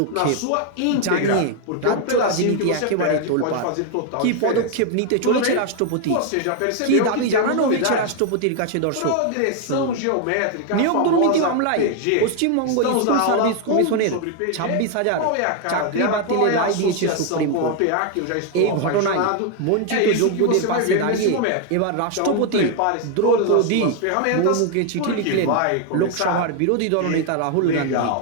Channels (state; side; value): different; both; correlation 0.01